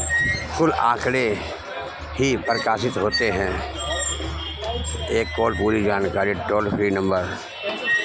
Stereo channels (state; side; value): identical; both; correlation 1.00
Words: कुल आंकड़े ही प्रकाशित होते हैं। एक कॉल पूरी जानकारी टोल फ्री नंबर